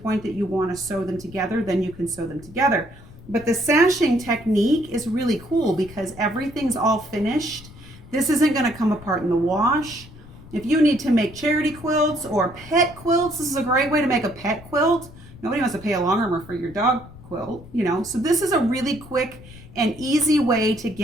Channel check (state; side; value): noise; left; rumble, 19 dB below the sound